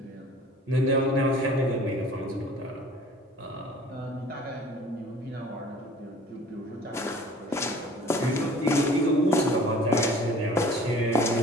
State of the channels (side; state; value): both; normal; correlation 0.48